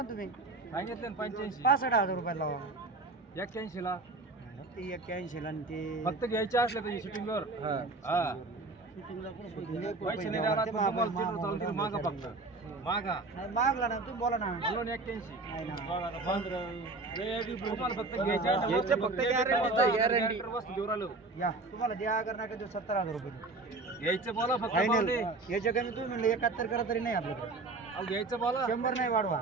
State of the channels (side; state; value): left; quieter; 3.3 dB